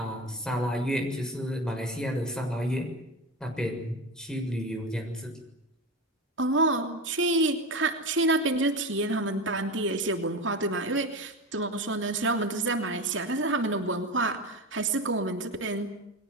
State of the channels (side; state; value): both; normal; correlation 0.23